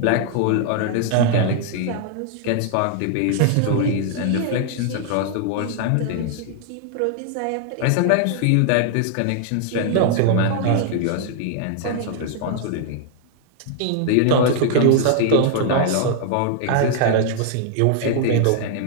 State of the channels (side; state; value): both; different; correlation 0.00